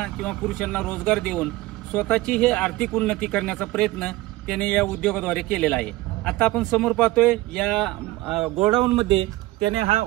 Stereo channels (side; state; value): left; quieter; 18.8 dB